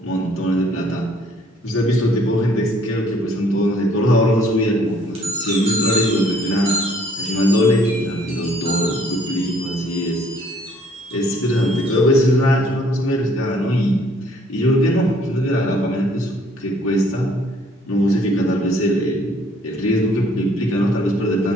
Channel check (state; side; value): normal; both; correlation 0.61